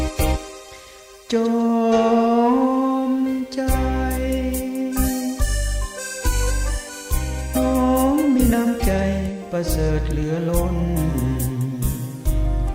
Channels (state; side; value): identical; both; correlation 1.00